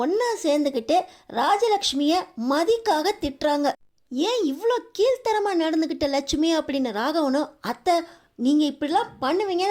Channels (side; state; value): both; identical; correlation 1.00